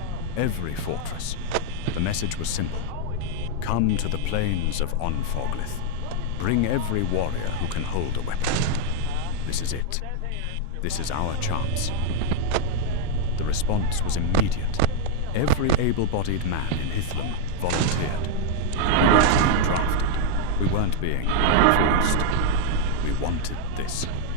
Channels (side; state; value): both; different; correlation 0.00